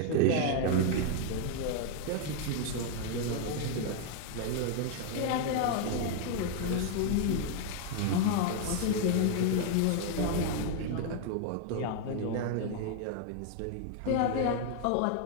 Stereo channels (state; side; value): different; both; correlation 0.00